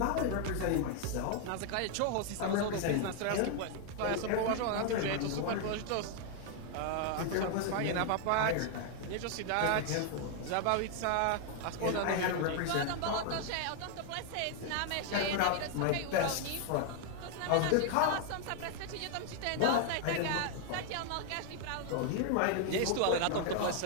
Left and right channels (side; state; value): both; different; correlation 0.00